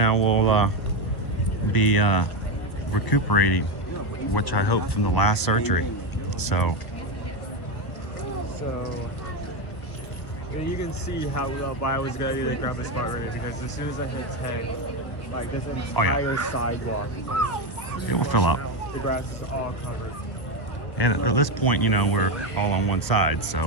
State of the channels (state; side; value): late; right; 1.4 ms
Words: we'll be recuperating, which I hope from the last surgery. So you can see how I was going to grab the spot right here, because as soon as I hit 10, like this entire sidewalk, it will fill up. the grass is all covered. And at this point, you know, we're all on one side,